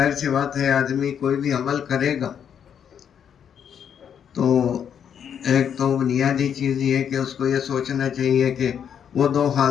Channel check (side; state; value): right; quieter; 8.3 dB